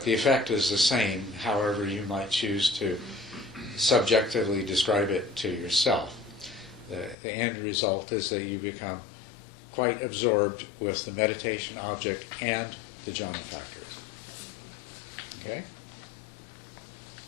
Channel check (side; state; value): right; drops out; at 7.2 s